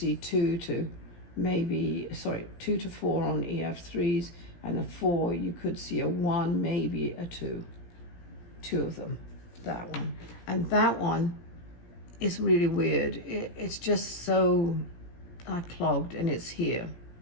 2 to 4 on EF3s, and a 4, you could see a 1, maybe a 2. 2 of them, that one. And that one is really weird. It's just so clogged, and it's here,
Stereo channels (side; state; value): right; late; 17 ms